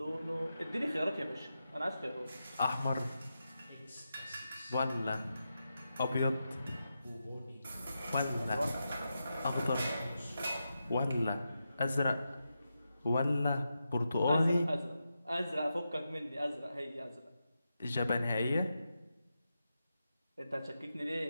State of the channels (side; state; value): both; inverted; correlation -0.89